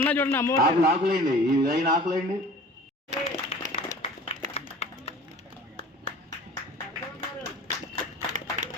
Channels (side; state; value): both; normal; correlation 0.44